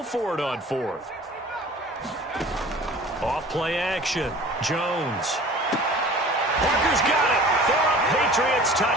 for it on 4th. Off play action. Jones. Parker's got it for a Patriots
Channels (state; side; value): normal; both; correlation 0.44